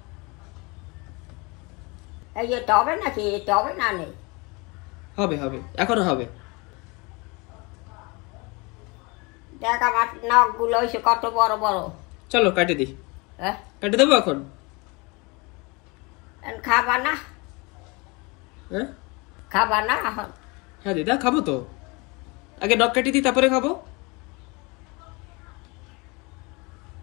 এই যে তবে নাকি তবে না নেই হবে হবে, এখনো হবে। দেখ আমার নখ গুলো হয়েছে কত বড় বড় চলো কাটে দিই। হ্যাঁ কাটে দেবো এখন? খাবা না হ্যাঁ খাবা না এখন হ্যাঁ দিদা, খাবো তো। আগে নখ কাটি দিই, তারপরে খাবো।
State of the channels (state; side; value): quieter; right; 27.6 dB